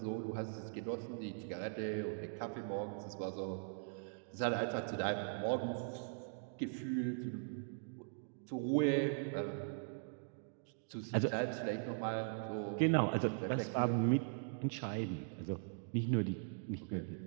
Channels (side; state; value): left; silent; digital silence